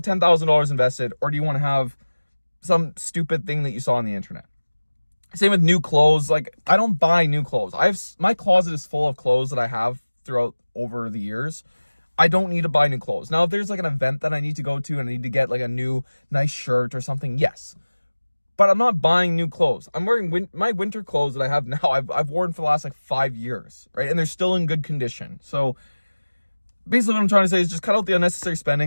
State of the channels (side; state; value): both; inverted; correlation -1.00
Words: invested, or do you want to have some stupid thing that you saw on the internet? Same with new clothes. Like, I don't buy new clothes. My closet is full of clothes that I have throughout over the years, I don't need to buy new clothes. Now, if there's like an event that I need to go to and I need to get like a new nice shirt or something, yes. But I'm not buying new clothes. I'm wearing my winter clothes that I have now. I've worn for the last like 5 years, right? And they're still in good condition. So basically what I'm trying to say is just cut out the unnecessary